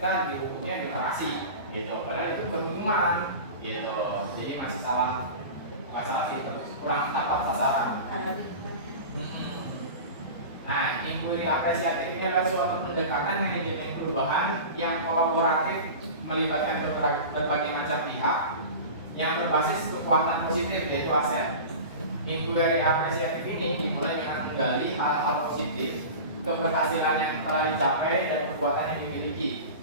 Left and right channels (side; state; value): both; inverted; correlation -0.32